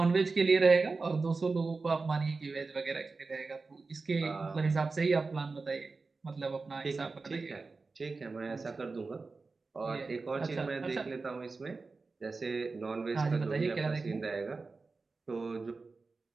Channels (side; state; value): left; quieter; 4.0 dB